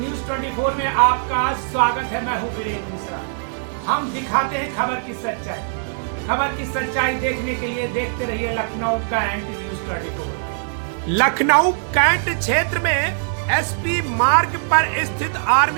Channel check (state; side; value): silent; left; 62 dB below the other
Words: 24 में आपका स्वागत है। मैं हूं वीरेंद्र मिश्रा। हम दिखाते हैं खबर की सच्चाई। खबर की सच्चाई देखने के लिए देखते रहिए Lucknow Cantt news 24। Lucknow Cantt क्षेत्र में एसपी मार्ग पर स्थित